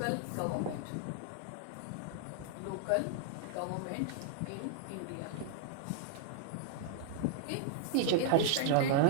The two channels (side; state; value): both; different; correlation -0.01